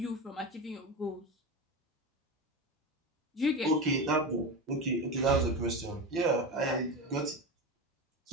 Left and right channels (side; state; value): both; normal; correlation 0.22